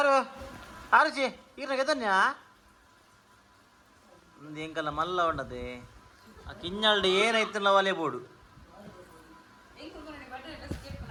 ಆರುಚಿ ಈಗ ಗೆದನ್ಯಾ ಒಂದು ಎಂಕಲ್ಲ ಮಲ್ಲ ಉಂಡದೆ ಆ ಕಿಂಜಲ್ಡ್ ಏನಾಯ್ತಲ್ಲ ಒಲೆ ಬೋಡು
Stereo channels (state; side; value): identical; both; correlation 1.00